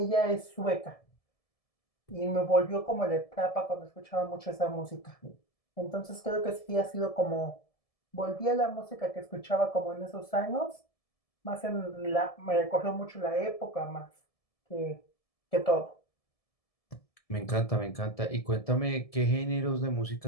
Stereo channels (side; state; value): right; late; 1.7 ms